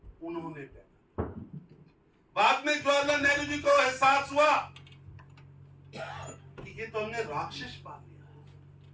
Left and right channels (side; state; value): both; identical; correlation 1.00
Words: उन्होंने देखा। बाद में जवाहरलाल नेहरू जी को एहसास हुआ कि ये तो हमने राक्षस पाल लिया,